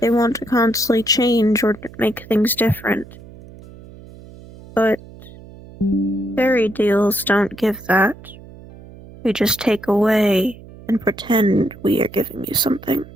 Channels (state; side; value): noise; right; hum, 19 dB below the sound